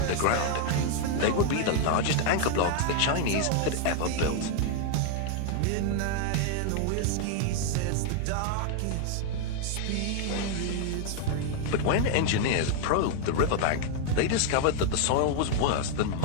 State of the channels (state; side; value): different; both; correlation 0.00